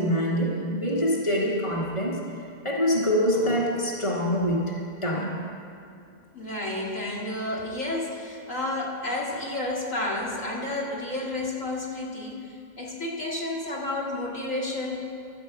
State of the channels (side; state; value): right; late; 2.0 ms